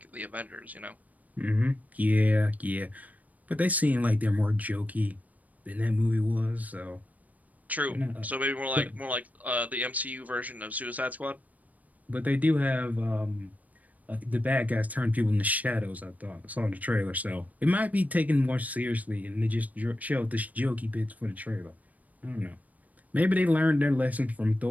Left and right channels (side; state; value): left; late; 0.074 ms